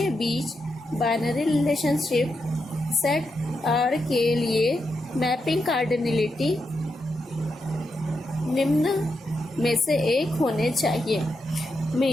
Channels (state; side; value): normal; both; correlation 0.85